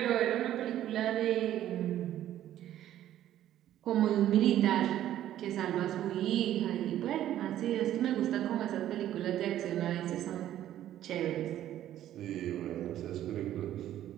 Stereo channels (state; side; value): quieter; left; 12.2 dB